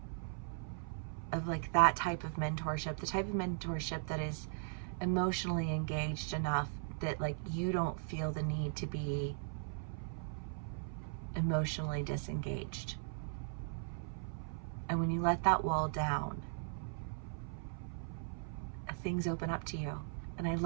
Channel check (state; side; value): silent; left; 52 dB below the other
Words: like that type of mentorship, the type of mentorship that is emotionally engaged enough that like you don't feel the need to be emotionally disengaged. And when you let that wall down, things open up to you. And I